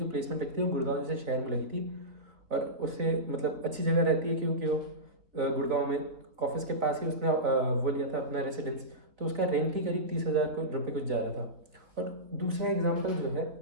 प्लेसमेंट लगती है वो गुड़गांव जैसे शहर में लगी थी। और उससे मतलब अच्छी जगह रहती है, क्योंकि वो गुड़गांव में ऑफिस के पास ही उसने वो लिया था अपना रेसिडेंस। तो उसका रेंट ही करीब 30,000 रुपये कुछ जा रहा था। और दूसरा एग्जाम्पल जो है,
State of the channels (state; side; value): late; left; 3.7 ms